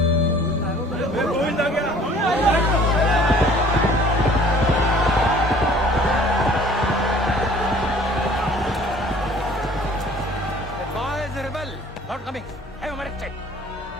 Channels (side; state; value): both; normal; correlation 0.52